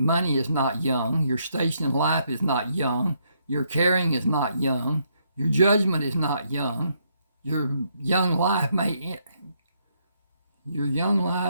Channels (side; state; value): both; inverted; correlation -0.74